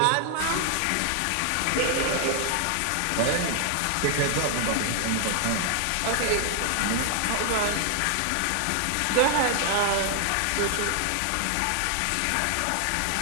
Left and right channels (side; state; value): both; different; correlation 0.00